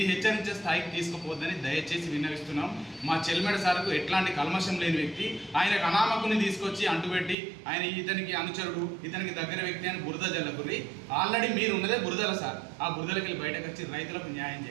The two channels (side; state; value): left; drops out; at 7.4 s